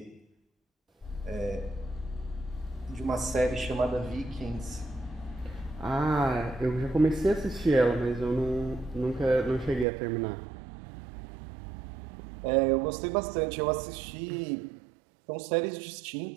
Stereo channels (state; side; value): drops out; left; at 9.9 s